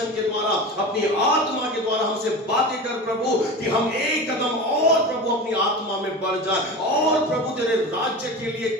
के द्वारा, अपनी आत्मा के द्वारा हमसे बातें कर प्रभु, कि हम एक कदम और प्रभु अपनी आत्मा में बढ़ जाए और प्रभु तेरे राज्य के लिए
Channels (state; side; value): normal; both; correlation 0.29